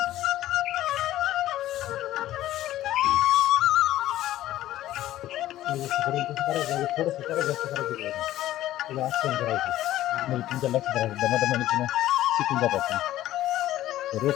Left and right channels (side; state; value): right; quieter; 14.1 dB